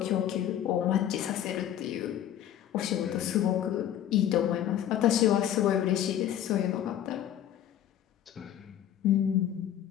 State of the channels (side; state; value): right; quieter; 11.0 dB